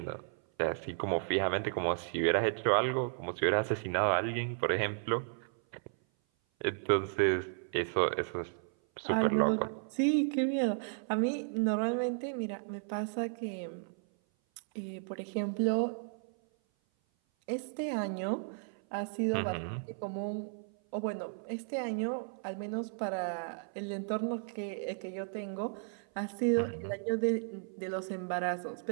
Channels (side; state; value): left; silent; 55 dB below the other